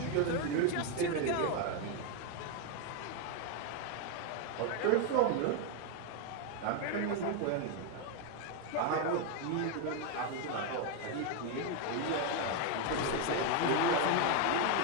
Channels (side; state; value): both; different; correlation 0.01